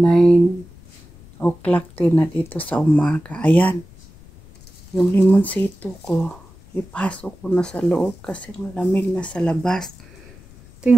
o'clock din na dito sa umaga. Ayan, yung limonsito ko ipasok ko na sa loob kasi malamig na sa labas.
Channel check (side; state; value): left; noise; rumble, 23 dB below the sound